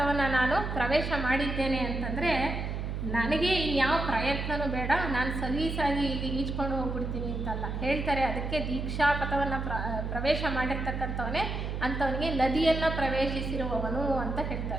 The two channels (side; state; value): right; noise; hum, 3 dB below the sound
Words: ನಾನು ಪ್ರವೇಶ ಮಾಡಿದ್ದೇನೆ ಅಂತಂದರೆ ನನಗೆ ಇನ್ಯಾವ ಪ್ರಯತ್ನವೂ ಬೇಡ, ನಾನು ಸಲೀಸಾಗಿ ಇಲ್ಲಿ ಈಜ್ಕೊಂಡು ಹೋಗ್ಬಿಡ್ತೀನಿ ಅಂತಲ್ಲ ಹೇಳ್ತಾರೆ. ಅದಕ್ಕೆ ದೀಕ್ಷಾಪಥವನ್ನು ಪ್ರವೇಶ ಮಾಡಿರ್ತಕ್ಕಂಥವನೇ ಅಂಥವನಿಗೆ ನದಿಯನ್ನು ಪ್ರವೇಶಿಸಿರುವವನು ಅಂತ